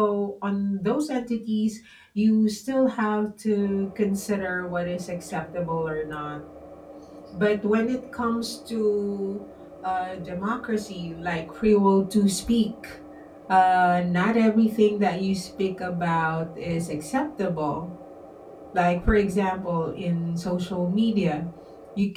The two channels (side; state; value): both; identical; correlation 1.00